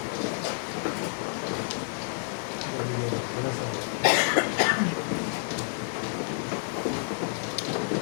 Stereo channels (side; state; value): right; silent; digital silence